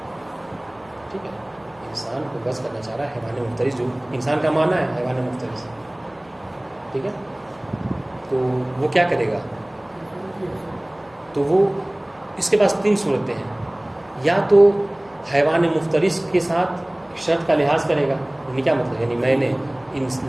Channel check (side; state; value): left; noise; hum, 30 dB below the sound